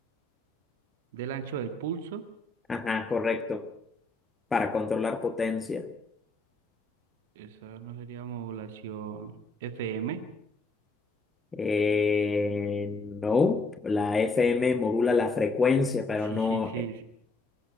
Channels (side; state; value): right; quieter; 3.4 dB